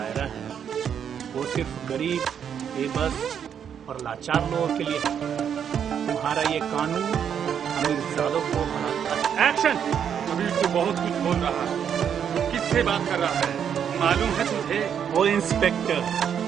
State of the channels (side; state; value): left; quieter; 8.3 dB